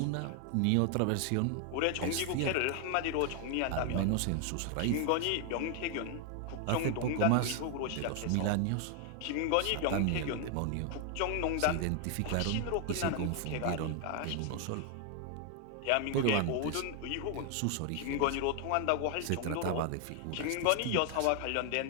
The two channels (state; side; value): different; both; correlation 0.00